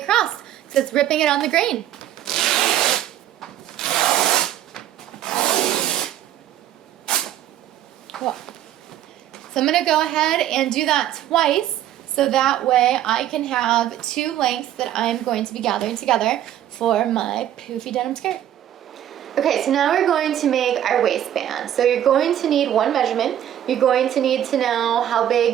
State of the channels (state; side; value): quieter; left; 11.6 dB